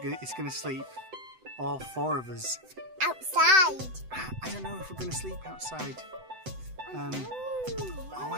going to sleep, all four of us. Outside. I don't know if we're going to sleep outside. Oh,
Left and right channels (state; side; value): late; left; 7.8 ms